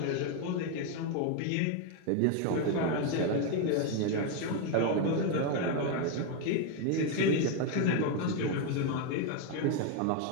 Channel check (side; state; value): both; different; correlation 0.01